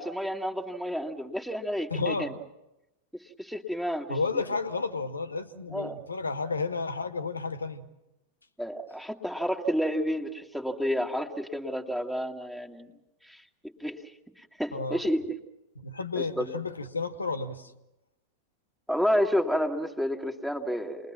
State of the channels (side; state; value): both; normal; correlation 0.46